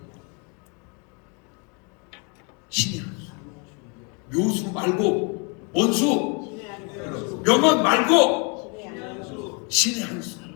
신의 한 수. 묘수 말고 원수, 명언 말고 신의 한 수.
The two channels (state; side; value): quieter; right; 34.1 dB